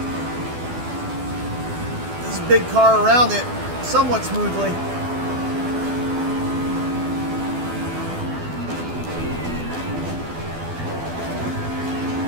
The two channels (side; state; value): left; late; 12 ms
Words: this big car around it somewhat smoothly.